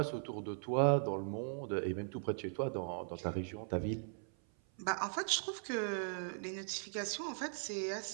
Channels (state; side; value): silent; left; 52 dB below the other